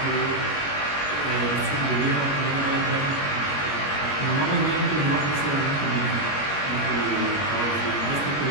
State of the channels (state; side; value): late; right; 21 ms